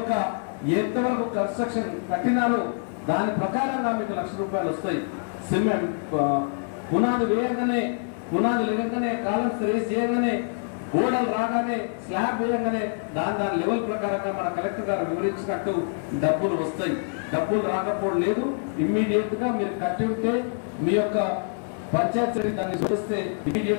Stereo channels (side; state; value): right; silent; digital silence